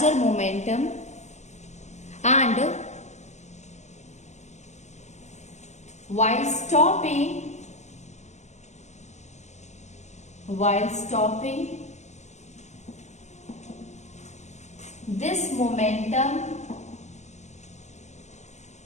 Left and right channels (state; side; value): late; right; 0.34 ms